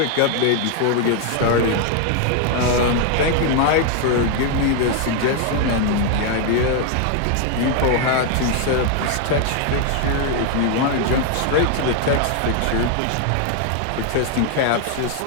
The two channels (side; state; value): both; different; correlation 0.01